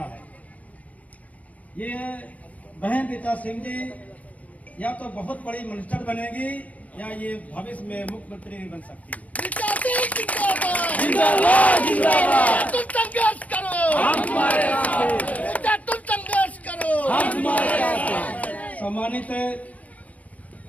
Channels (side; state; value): right; late; 0.070 ms